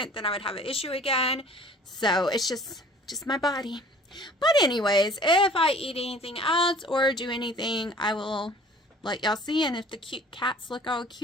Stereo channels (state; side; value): normal; both; correlation 0.49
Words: then I would have an issue again. So it's just my body. But anyways, if I eat anything else or do anything, I will let y'all see. And if the cute cats look all